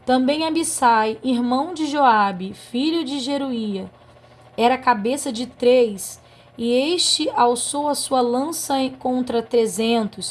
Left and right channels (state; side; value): identical; both; correlation 1.00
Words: Também Abissai, irmão de Joabe, filho de Jeruía, era cabeça de 3, e este alçou a sua lança contra